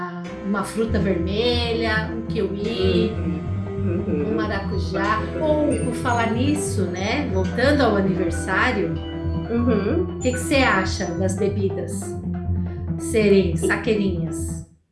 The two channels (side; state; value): both; identical; correlation 1.00